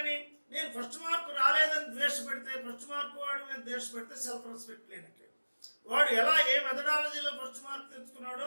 నేను ఫస్ట్ మార్క్ రాలేదని ద్వేషపెడితే, ఫస్ట్ మార్క్ వాడు మీద ద్వేషపెడితే సెల్ఫ్ రెస్పెక్ట్ లేనట్టు. వాడు ఎలా ఏ మెథడాలజీలో ఫస్ట్ మార్క్ తెచ్చుకున్నాడో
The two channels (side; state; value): both; inverted; correlation -1.00